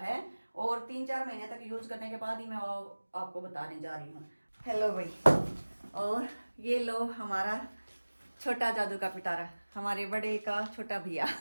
और 3-4 महीने तक यूज करने के बाद ही मैं आपको बताने जा रही हूँ। हेलो भाई, और ये लो हमारा छोटा जादू का पिटारा, हमारे बड़े का छोटा भैया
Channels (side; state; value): both; inverted; correlation -1.00